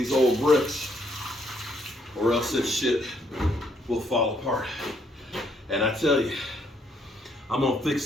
old bricks, or else this shit will fall apart. And I tell you, I'm gonna fix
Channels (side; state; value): both; normal; correlation 0.71